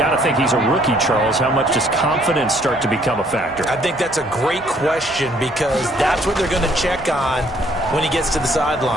to think he's a rookie, Charles. How much does confidence start to become a factor? I think that's a great question because that's what they're going to check on when he gets to the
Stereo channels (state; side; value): normal; both; correlation 0.63